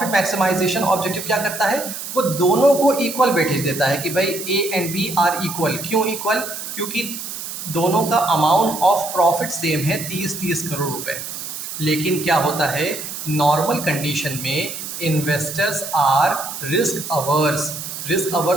मैक्सिमाइजेशन ऑब्जेक्टिव क्या करता है, वो दोनों को इक्वल वेटेज देता है कि भाई A and B are equal. क्यों इक्वल? क्योंकि दोनों का अमाउंट ऑफ प्रॉफिट सेम है, 30 करोड़ रुपए। लेकिन क्या होता है, नॉर्मल कंडीशन में investors are risk averse, risk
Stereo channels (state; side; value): noise; right; hiss, 8 dB below the sound